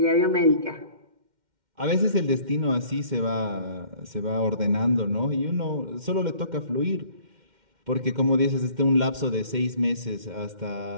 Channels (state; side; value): late; left; 2.1 ms